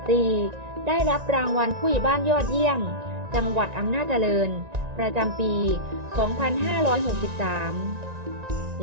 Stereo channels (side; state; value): left; late; 1.9 ms